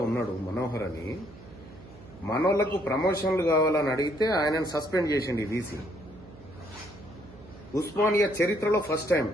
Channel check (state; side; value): noise; right; hum, 20 dB below the sound